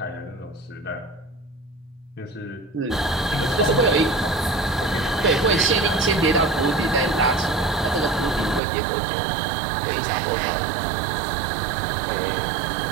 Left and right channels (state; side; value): drops out; left; at 8.6 s